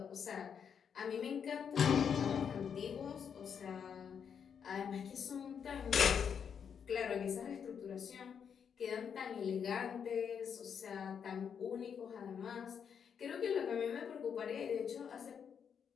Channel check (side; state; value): right; quieter; 7.3 dB